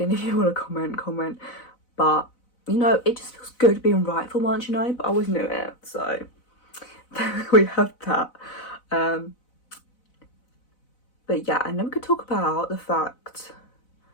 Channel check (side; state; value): right; late; 4.0 ms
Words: If you want to comment. But, you know, it just feels good being right for once, you know. But I always knew it. So we have that. But yeah, and then we could talk about the fact